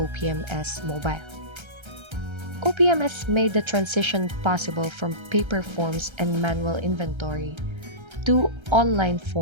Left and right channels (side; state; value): left; late; 1.3 ms